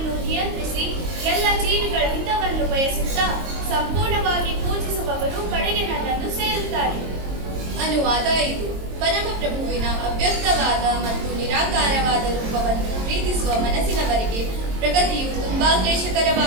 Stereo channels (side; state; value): left; late; 22 ms